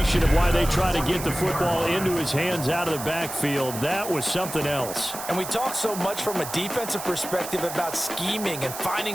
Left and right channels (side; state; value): right; noise; hiss, 9 dB below the sound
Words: of why they try to get the football into his hands out of the backfield. That was something else. And we talk so much from a defensive perspective about scheming and